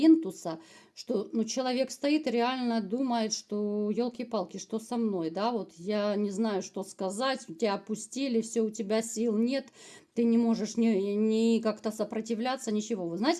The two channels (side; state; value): both; identical; correlation 1.00